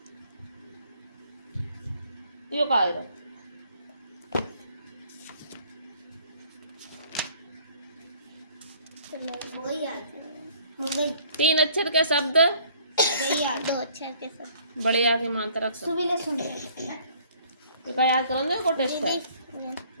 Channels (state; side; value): inverted; both; correlation -0.58